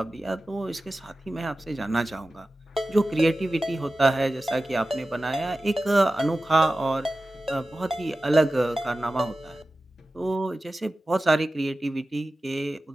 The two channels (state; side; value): normal; both; correlation 0.95